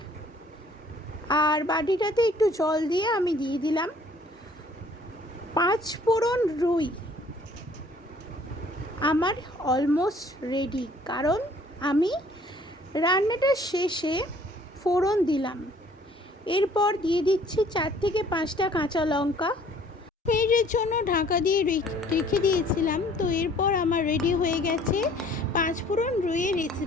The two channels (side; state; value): both; normal; correlation 0.56